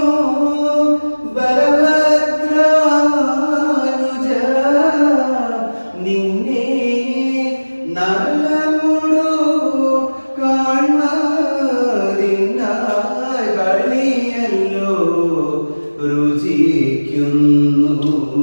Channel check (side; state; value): both; inverted; correlation -1.00